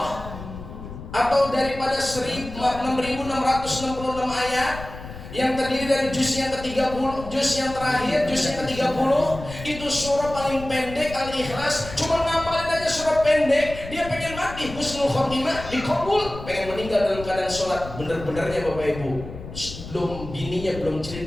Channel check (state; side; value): noise; left; rumble, 12 dB below the sound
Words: atau daripada 6.666 ayat yang terdiri dari juz yang ke-30, juz yang terakhir, juz yang ke-30. Itu surah paling pendek Al-Ikhlas. Cuma ngapalin aja surah pendek, dia pengen mati husnul khotimah, dikabul, pengen meninggal dalam keadaan sholat. Bener-benernya Bapak Ibu, bininya belum